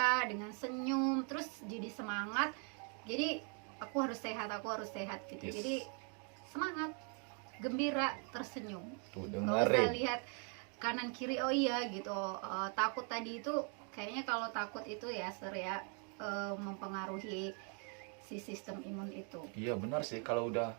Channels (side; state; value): left; quieter; 39.0 dB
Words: dengan senyum, terus jadi semangat. Jadi aku harus sehat gitu. Yes. Jadi semangat, gembira, tersenyum. Tuh Nggak usah dengerin. lihat kanan kiri, oh iya gitu. Takut tadi itu kayaknya, kalau takut itu ya mempengaruhi si sistem imun itu. Iya benar sih, kalau udah